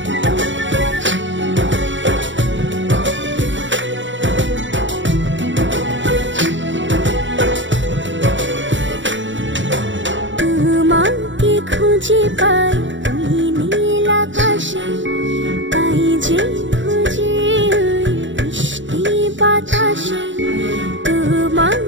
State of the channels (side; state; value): left; late; 0.55 ms